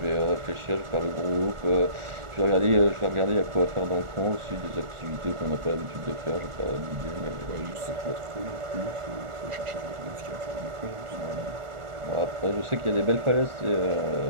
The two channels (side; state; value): left; late; 1.4 ms